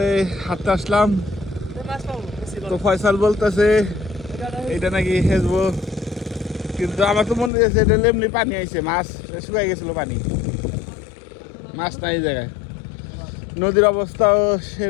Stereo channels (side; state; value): right; drops out; at 7.5 s